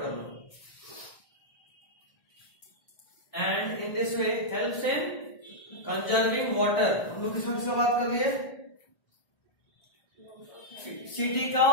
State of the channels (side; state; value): right; late; 1.4 ms